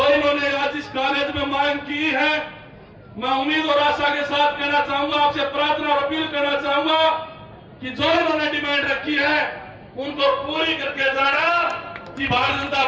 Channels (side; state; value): both; identical; correlation 1.00